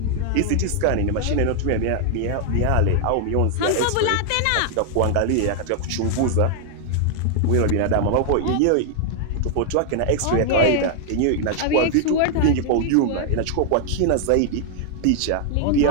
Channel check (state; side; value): different; both; correlation 0.00